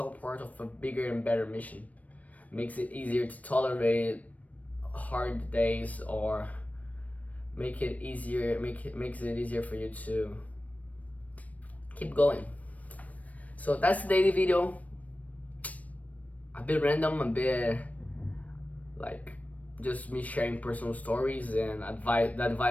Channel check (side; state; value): right; late; 0.070 ms